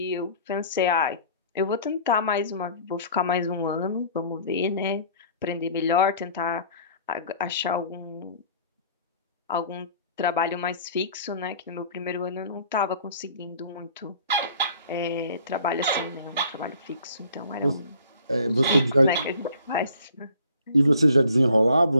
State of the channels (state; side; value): inverted; both; correlation -0.52